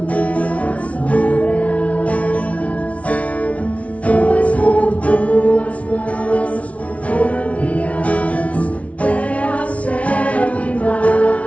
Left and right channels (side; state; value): right; late; 0.065 ms